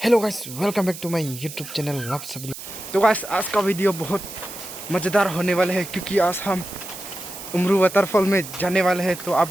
guys, welcome back to my YouTube channel. आप सभी तो गाइस आज का वीडियो बहुत मज़ेदार होने वाला है क्योंकि आज हम उमरू वाटरफॉल में जाने वाले हैं। तो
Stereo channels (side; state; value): right; noise; hiss, 12 dB below the sound